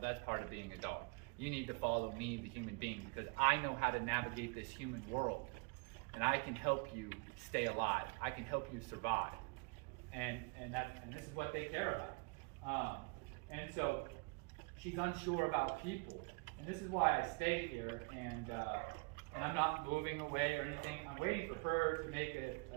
That's part of being a dog. You need to follow me, the human being, because I know how to navigate this human world. And I can help you stay alive. I can help you survive. And this is what they care about. And so she's unsure about people. And this is why I stay here, and I'm not moving away or anything. I'm waiting for her to make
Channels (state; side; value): quieter; left; 31.5 dB